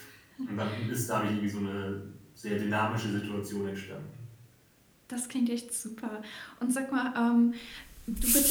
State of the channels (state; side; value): identical; both; correlation 1.00